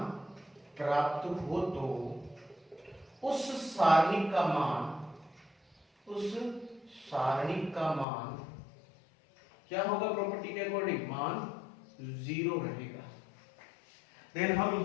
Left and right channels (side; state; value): right; drops out; at 8.1 s